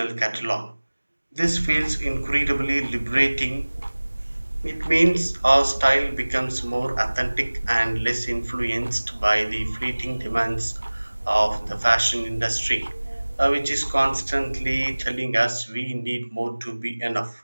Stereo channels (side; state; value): both; inverted; correlation -1.00